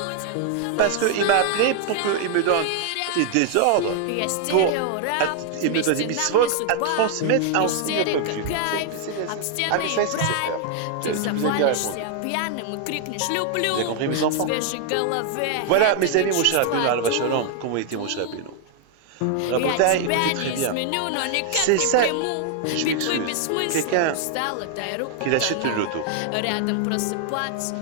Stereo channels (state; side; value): different; both; correlation 0.00